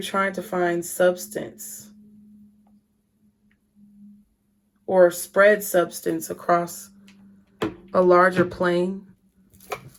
trying to find substance or spread substance across a larger plane.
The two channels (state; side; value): identical; both; correlation 1.00